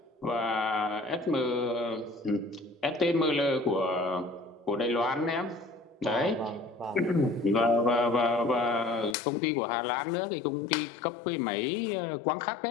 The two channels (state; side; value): drops out; right; at 9.2 s